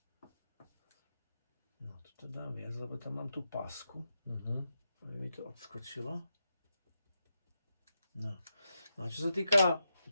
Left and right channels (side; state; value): both; inverted; correlation -0.86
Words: No, toto dám viac, lebo tam mám tú pásku. Aby mi to odskočilo. No. A čo sa týka